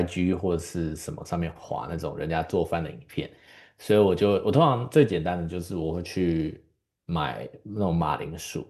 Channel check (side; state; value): both; identical; correlation 1.00